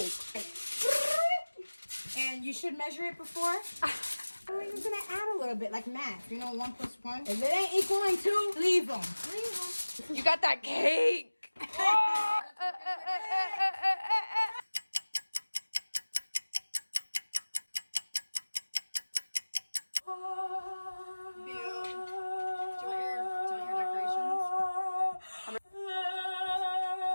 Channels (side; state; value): both; inverted; correlation -1.00